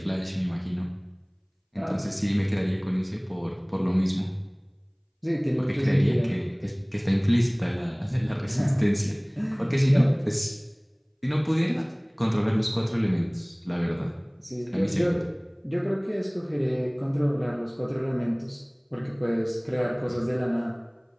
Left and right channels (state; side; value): identical; both; correlation 1.00